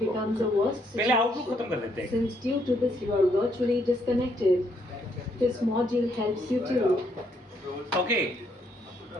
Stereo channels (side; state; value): both; normal; correlation 0.72